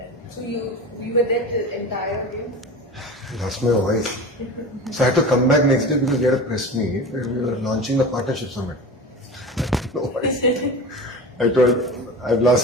So we were there the entire game. I lost my voice. So I had to come back next day because we had a press meet where we were launching the partnership summit. No voice. I told, I've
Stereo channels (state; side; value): normal; both; correlation 0.32